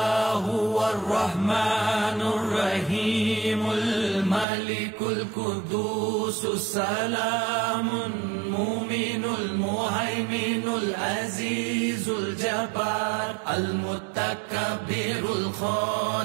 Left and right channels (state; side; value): drops out; left; at 4.5 s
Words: هو الرحمن الرحيم الملك القدوس السلام المؤمن المهيمن العزيز الجبار المتكبر